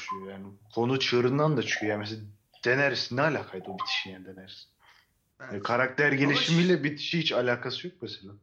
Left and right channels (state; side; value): identical; both; correlation 1.00